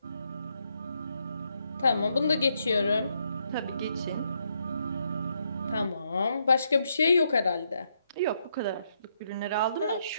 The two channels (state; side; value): inverted; both; correlation -0.77